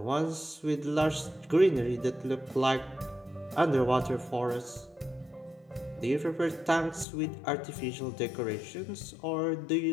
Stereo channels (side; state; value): right; drops out; at 7.1 s